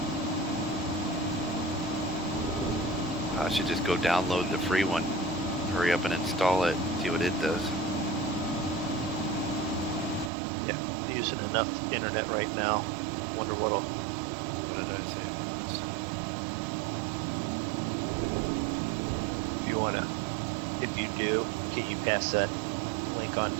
I should just go download the free one. Hurry up and install it. See what it does. Yeah, using enough internet right now. Wonder what'll. What did I say? If you do, can you pass that link on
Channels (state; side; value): drops out; left; at 10.3 s